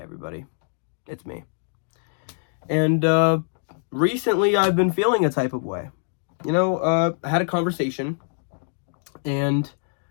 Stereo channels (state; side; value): silent; right; digital silence